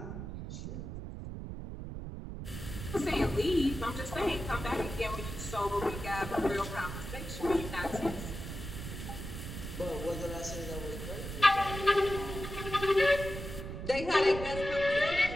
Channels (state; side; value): noise; right; rumble, 8 dB below the sound